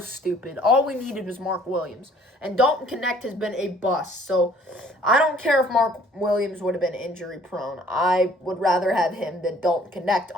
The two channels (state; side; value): normal; both; correlation 0.57